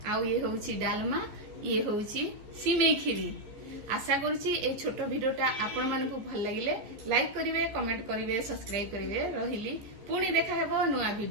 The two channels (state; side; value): late; left; 14 ms